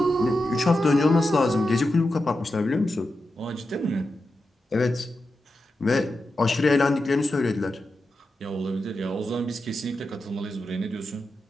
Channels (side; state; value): both; normal; correlation 0.90